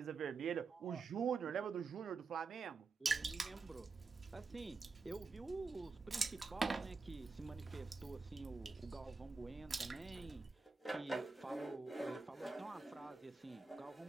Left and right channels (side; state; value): left; quieter; 4.2 dB